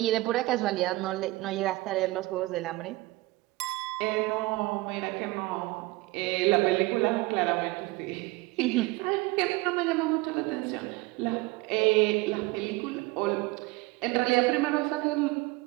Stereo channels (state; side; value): quieter; left; 21.4 dB